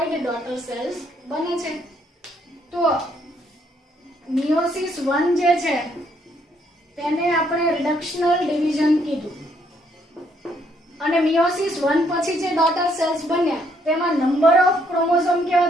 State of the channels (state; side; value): normal; both; correlation 0.70